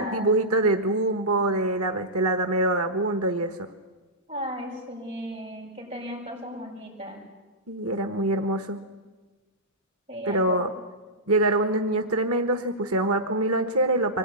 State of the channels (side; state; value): both; normal; correlation -0.14